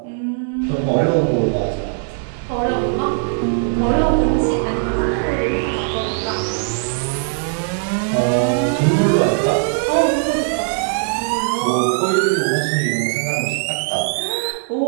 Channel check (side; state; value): left; silent; 63 dB below the other